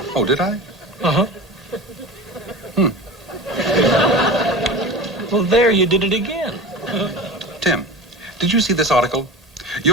did I? Uh-huh. Well, there you did it again. Tim, did you see this article?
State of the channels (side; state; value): both; normal; correlation 0.32